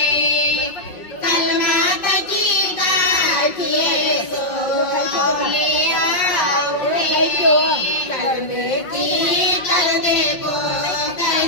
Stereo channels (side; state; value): right; late; 5.5 ms